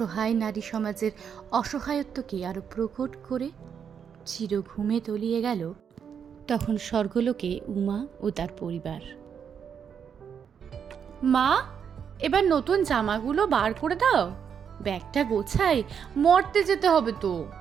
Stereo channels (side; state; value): left; quieter; 7.5 dB